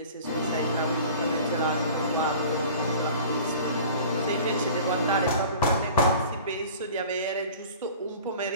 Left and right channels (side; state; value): both; inverted; correlation -0.43